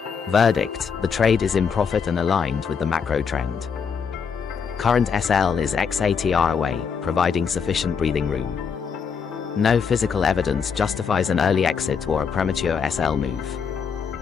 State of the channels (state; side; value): quieter; right; 6.3 dB